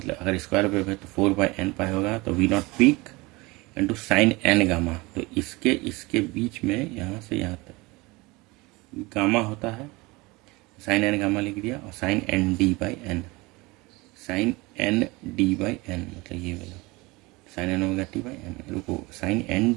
अगर स्क्वायर वेव है तो 4 बाई एन पाई होगा, तो V not peak into sine N gamma. तो इसके बीच में यहाँ से यहाँ तक गामा होता है, साइन एन गामा लिख दिया, और sine N D by N, sine N D by N मतलब ये वाला sine N omega T by N. रुको, sine N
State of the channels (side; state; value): left; quieter; 23.6 dB